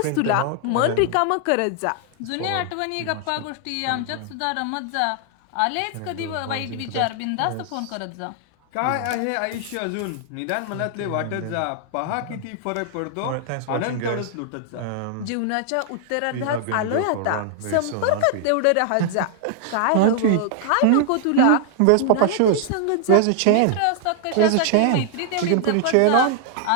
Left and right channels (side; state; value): both; different; correlation 0.00